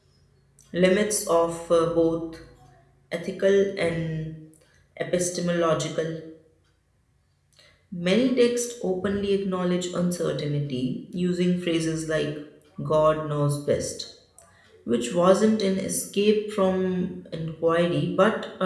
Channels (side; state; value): both; identical; correlation 1.00